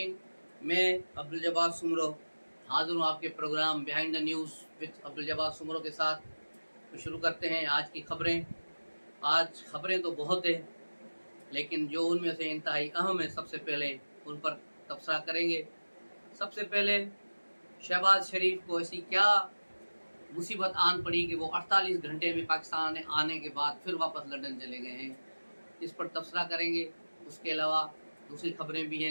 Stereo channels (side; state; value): both; inverted; correlation -1.00